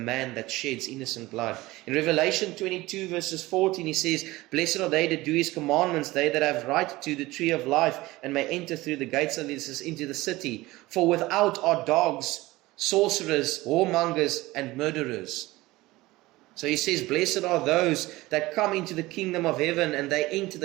that sheds innocent blood. In Revelation 22 verses 14 He says, blessed are they that do His commandments, they that have right to the tree of life, and may enter through the gates of this into the city. For without are dogs, sorcerers, whoremongers, and murderers. So He says, blessed are those that come into the kingdom of heaven, and they enter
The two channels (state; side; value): quieter; left; 19.4 dB